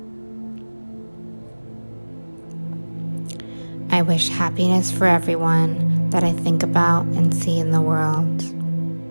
I wish happiness for everyone that I think about and see in the world.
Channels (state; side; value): inverted; both; correlation -1.00